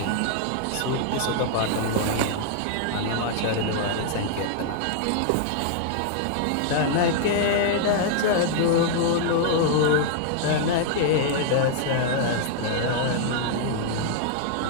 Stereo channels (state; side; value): different; both; correlation -0.01